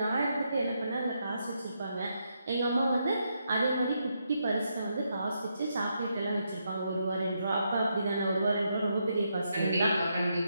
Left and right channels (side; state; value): both; inverted; correlation -0.80